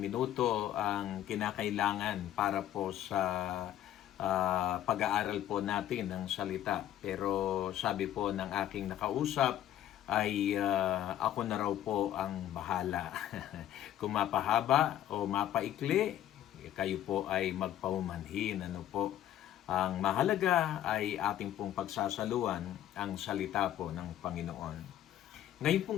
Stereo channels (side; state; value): right; quieter; 11.9 dB